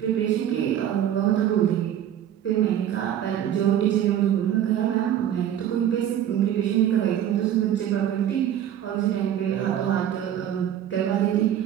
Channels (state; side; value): quieter; left; 10.6 dB